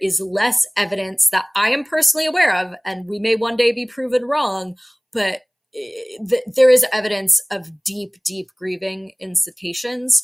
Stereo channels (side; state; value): both; identical; correlation 1.00